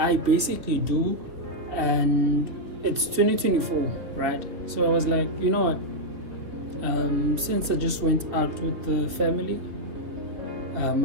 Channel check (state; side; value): late; left; 3.3 ms